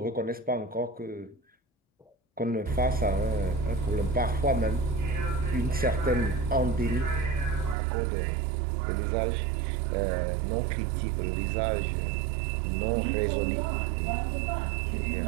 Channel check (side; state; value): left; drops out; at 7.8 s